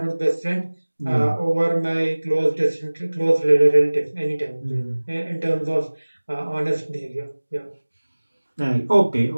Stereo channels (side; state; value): both; inverted; correlation -1.00